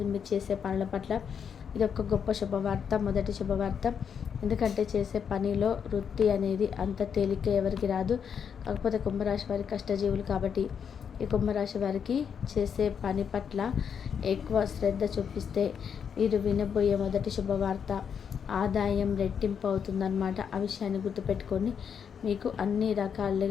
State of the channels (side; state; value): right; quieter; 7.3 dB